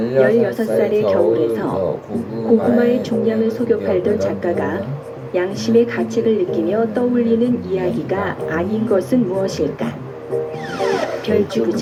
겨울에서 고구마의 중량을 속여 팔던 작가가 양심의 가책을 느끼며 떠올리는 이야기가 아닌 것은 무엇일까?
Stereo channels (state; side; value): identical; both; correlation 1.00